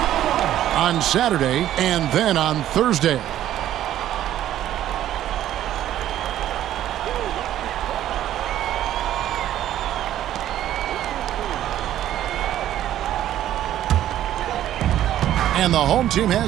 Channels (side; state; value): left; quieter; 12.2 dB